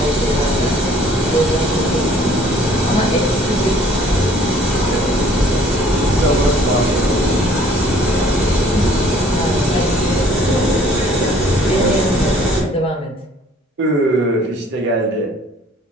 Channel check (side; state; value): both; normal; correlation 0.56